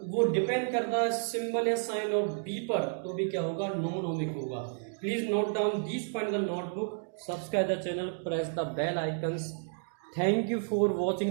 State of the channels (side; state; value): left; silent; digital silence